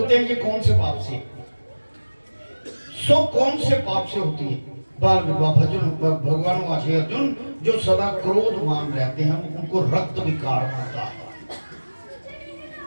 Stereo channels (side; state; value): both; inverted; correlation -1.00